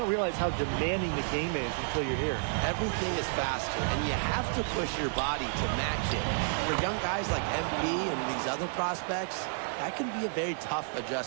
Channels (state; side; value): silent; left; digital silence